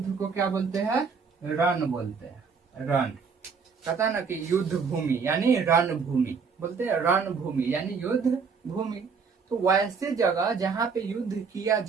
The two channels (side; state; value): left; quieter; 5.5 dB